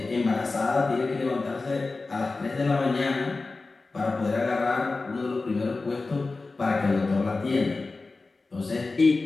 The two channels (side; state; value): right; quieter; 3.7 dB